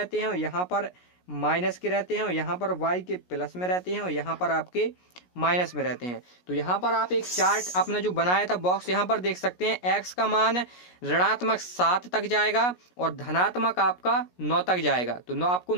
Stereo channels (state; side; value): late; right; 17 ms